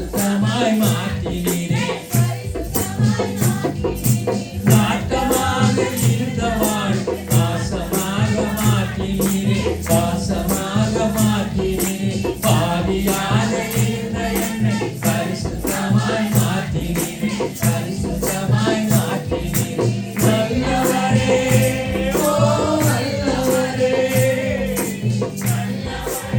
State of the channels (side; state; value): both; identical; correlation 1.00